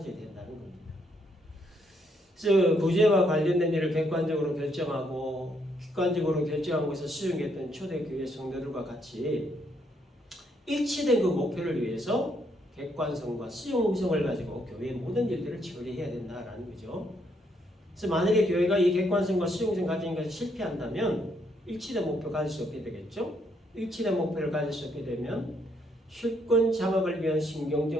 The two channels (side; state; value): both; normal; correlation 0.73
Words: 된다는 겁니다. 그래서 구제와 관련된 일을 객관적으로 결정하고 객관적으로 결정한 것을 수용했던 초대교회 성도들과 같이 일치된 그 목표를 위해서 객관성과 수용성을 가지고 교회의 모든 일들을 처리해야 된다라는 거죠. 그래서 만약에 교회가 이 객관성과 수용성 가진 것을 실패한다면 일치된 목표 가질 수 없게 되겠죠. 일치된 목표를 가질 수 없게 되면 실권 장악을 위한